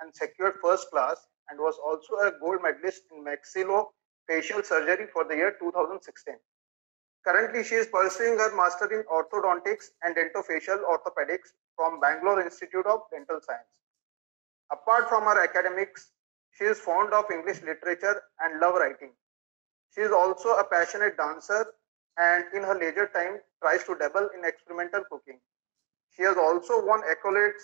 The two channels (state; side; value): quieter; left; 31.8 dB